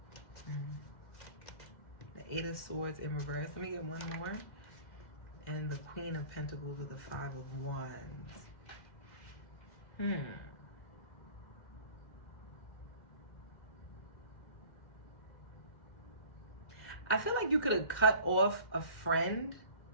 the Eight of Swords in reverse. Let me get one more. And the Queen of Pentacles with the Five of Wands. I feel like you could have cut off a friend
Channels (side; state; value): right; late; 2.0 ms